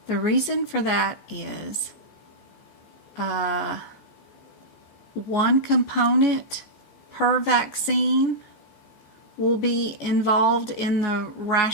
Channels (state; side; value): late; right; 14 ms